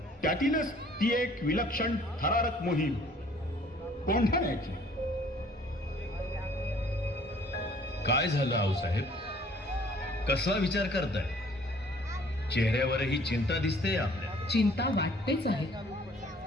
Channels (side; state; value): both; normal; correlation 0.56